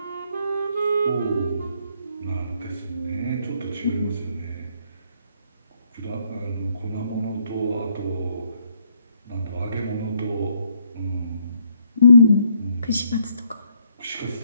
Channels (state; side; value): inverted; both; correlation -0.71